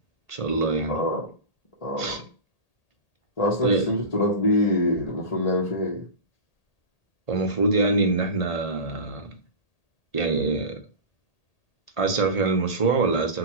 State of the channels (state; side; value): late; right; 1.8 ms